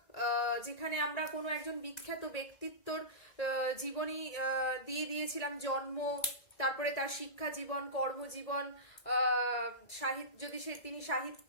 যেখানে আমরা কোনো একজন বিখ্যাত ব্যক্তিত্বর জীবনী দিয়ে দিয়েছিলাম, জন্ম, তারপরে তার শিক্ষা জীবন, কর্মজীবন, সাহিত্য, যদি তিনি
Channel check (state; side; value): late; right; 2.0 ms